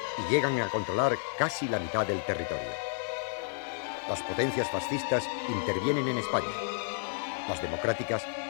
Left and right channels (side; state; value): right; silent; digital silence